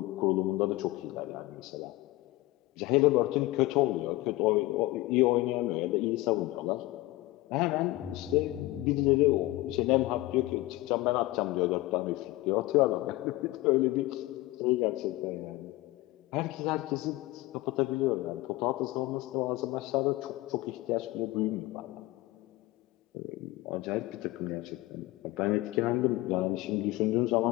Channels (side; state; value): right; quieter; 19.0 dB